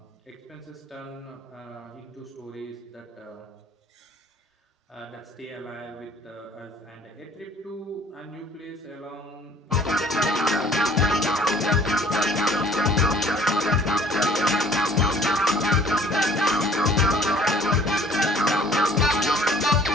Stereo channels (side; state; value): both; normal; correlation 0.53